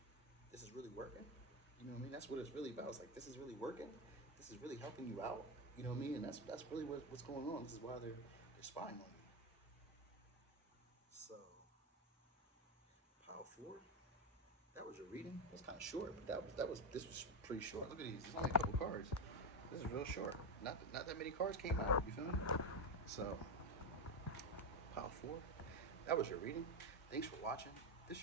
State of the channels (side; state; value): both; normal; correlation 0.10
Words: this is really working. You know what I mean? That's what it's really about. It's like, this is really working. This is really helping you out. You know what I mean? And that's really what's going on. This is why they're spying on you. So, Pile 4. That was your reading. It was kind of short, but this was pretty short. Look at these. There's only a couple cards. This is real short. Not that many cards came out. You feel me? So, Pile 4. That was your reading. Thanks for watching. This